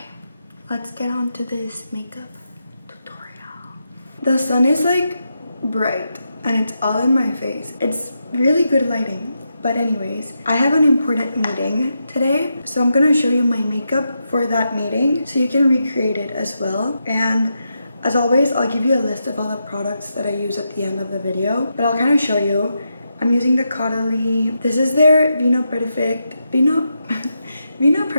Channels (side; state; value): both; inverted; correlation -0.85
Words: let's get on to this makeup tutorial. The sun is like bright and it's all in my face. It's really good lighting. But anyways, I have an important meeting today, so I'm gonna show you my makeup for that meeting so you can recreate it as well. And as always, I'll give you a list of all the products that I use at the end of the video, but I'll kind of show you. I'm using the Caudalie. This is their Vino Perfect